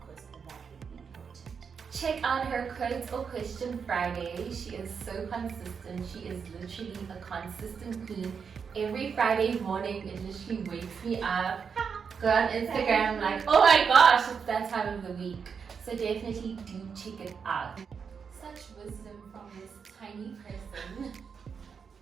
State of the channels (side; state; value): left; quieter; 6.3 dB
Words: because that will be important. Check out her Quotes or Question Friday. She is so consistent. She is literally a consistent queen. Every Friday morning, it literally wakes me up. Go on Instagram, like, oh my gosh, it's that time of the week. So definitely do check it out. Such wisdom from this tiny person.